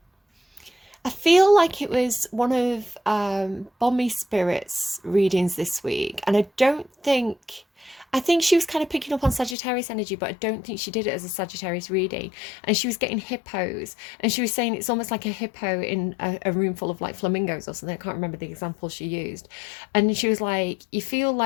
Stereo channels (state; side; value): drops out; right; at 9.6 s